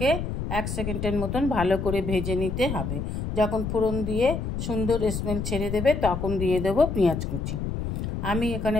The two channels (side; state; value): left; noise; rumble, 3 dB below the sound